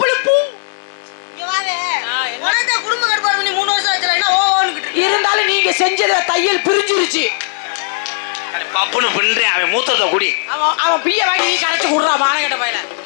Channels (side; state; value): right; silent; digital silence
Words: பூ. இங்க வாவே. உனக்கு குடும்ப கட்டுப்பாடு பண்ணி 3 வருஷம் ஆச்சுல, என்ன ஓன்னுக்கிட்டு இருக்க? இருந்தாலும் நீங்க செஞ்சத தையல் பிரிஞ்சிருச்சு. பப்புன்னு பின்றேன். அவன் மூத்தத்தை குடி. அவன் பிய வாங்கி நீ கரைச்சு குடுறா மானகட்ட பையன.